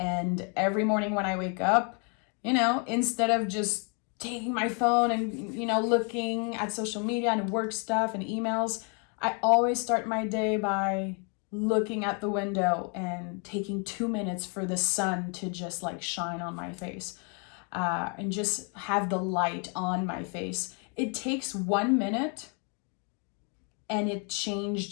every morning when I wake up, instead of just taking my phone and, looking at social media and work stuff and emails, I always start my day by looking at the window and taking 2 minutes for the sun to just like shine on my face, and just have the light on my face. It takes 1 minute and it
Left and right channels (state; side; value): quieter; right; 37.6 dB